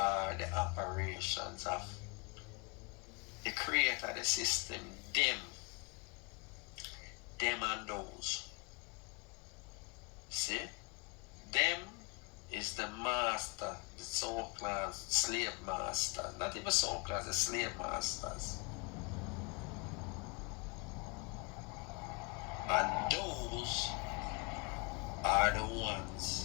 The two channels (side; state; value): right; quieter; 30.0 dB